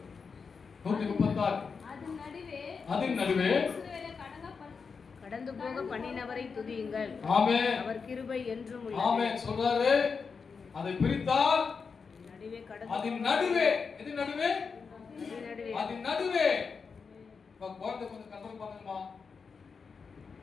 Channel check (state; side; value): quieter; right; 5.4 dB